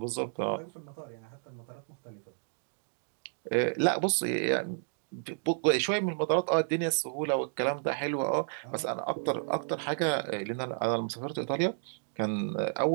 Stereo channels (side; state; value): left; silent; digital silence